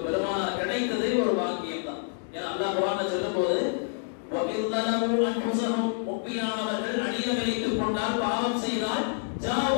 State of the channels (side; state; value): right; silent; digital silence